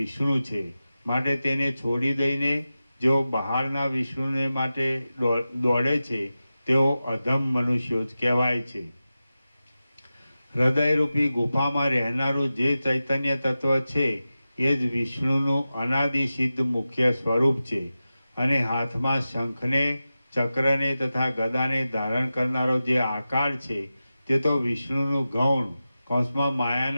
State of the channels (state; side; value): inverted; both; correlation -0.94